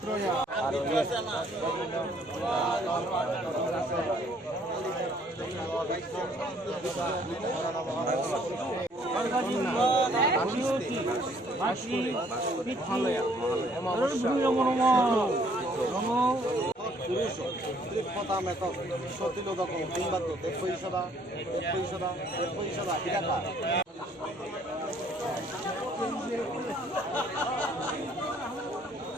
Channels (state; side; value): normal; both; correlation 0.62